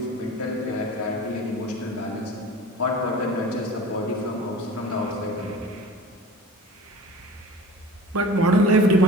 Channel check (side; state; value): both; normal; correlation 0.38